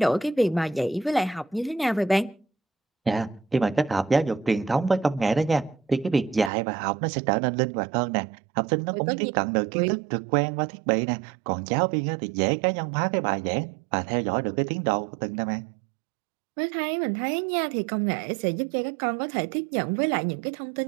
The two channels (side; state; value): left; drops out; at 6.5 s